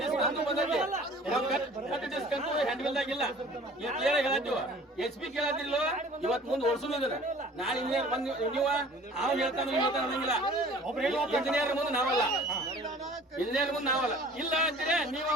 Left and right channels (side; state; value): both; normal; correlation 0.48